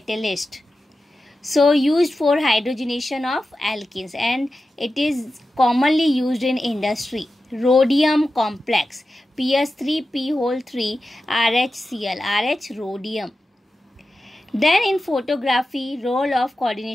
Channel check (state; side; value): normal; both; correlation 0.92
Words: So used for hydrogenation of alkenes and it is commonly used in industry. Rhodium complex, PS3P3RHCl, RH rhodium. Then in photography, role of